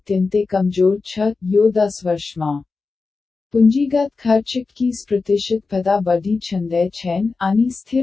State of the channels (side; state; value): right; quieter; 4.2 dB